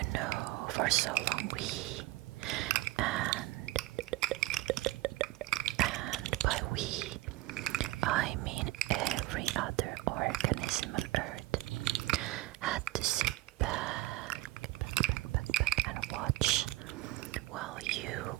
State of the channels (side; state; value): left; quieter; 18.1 dB